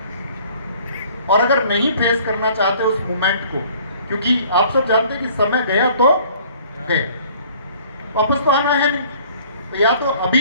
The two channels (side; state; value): both; inverted; correlation -0.54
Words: और अगर नहीं फेस करना चाहते उस मोमेंट को, क्योंकि आप सब जानते हैं कि समय गया तो गए, वापस तो आना है नहीं, तो या तो